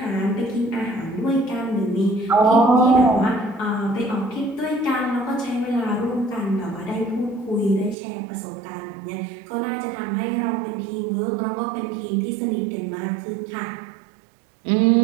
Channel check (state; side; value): drops out; left; at 8.0 s